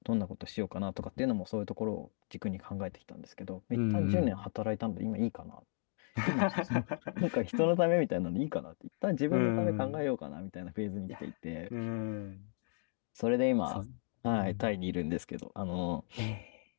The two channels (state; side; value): silent; right; 54 dB below the other